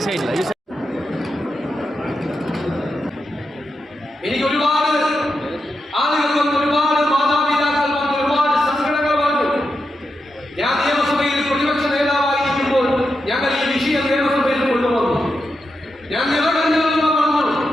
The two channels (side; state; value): both; normal; correlation 0.87